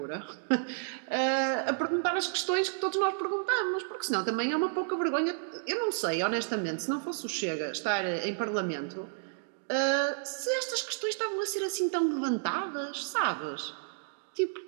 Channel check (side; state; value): left; silent; digital silence